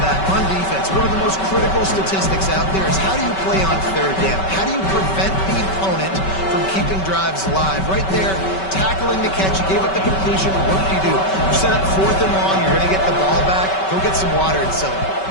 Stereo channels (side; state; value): right; late; 5.2 ms